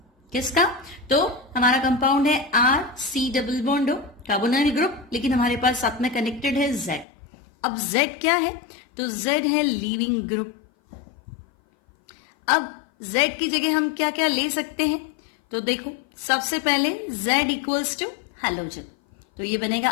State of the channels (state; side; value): drops out; right; at 7.1 s